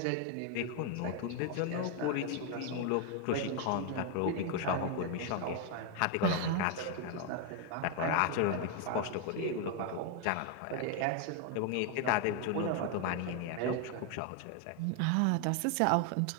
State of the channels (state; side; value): different; both; correlation 0.01